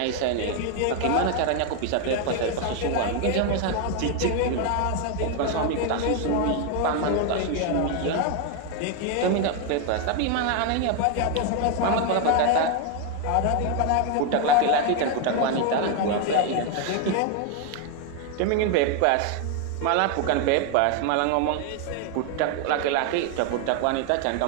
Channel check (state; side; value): different; both; correlation 0.01